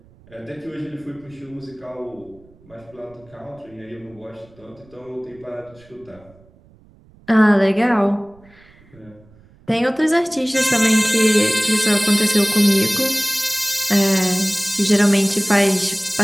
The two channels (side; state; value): right; noise; rumble, 28 dB below the sound